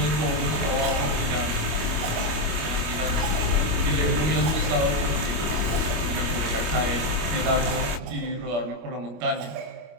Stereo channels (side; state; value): left; late; 25 ms